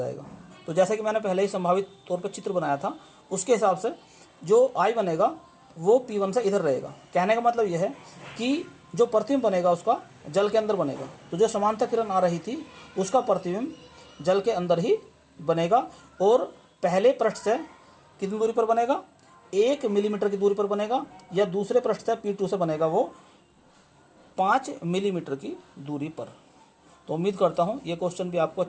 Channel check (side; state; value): both; identical; correlation 1.00